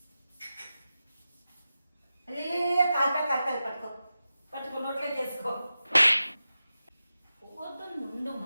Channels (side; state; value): both; inverted; correlation -0.92